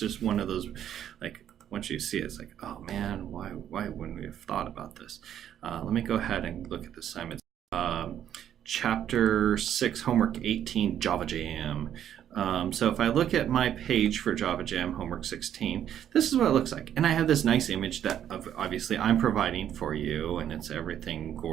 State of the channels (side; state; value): left; quieter; 10.2 dB